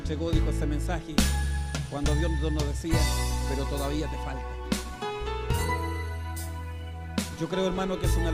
dijo ese mensaje, cuando Dios nos decía, pero todavía te falta. Yo creo, hermano, que es una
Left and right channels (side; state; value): both; identical; correlation 1.00